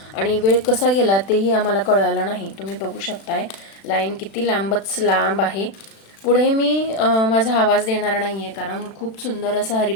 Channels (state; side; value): late; right; 36 ms